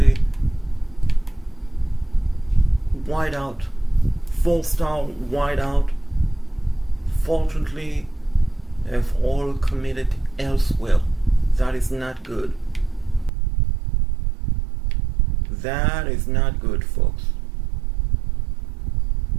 wideout, 4-star wideout. Fortunately, they've all committed elsewhere. That is not good. That is not good, folks.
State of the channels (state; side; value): drops out; left; at 13.3 s